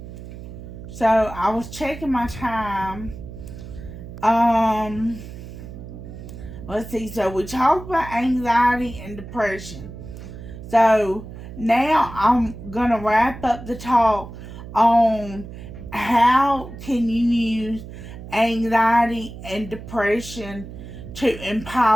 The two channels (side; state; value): right; noise; hum, 12 dB below the sound